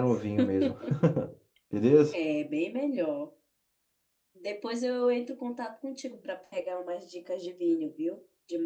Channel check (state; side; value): identical; both; correlation 1.00